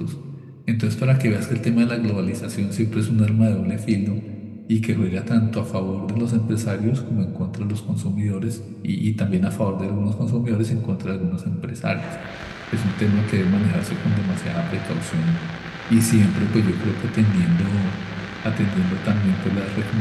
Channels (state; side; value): identical; both; correlation 1.00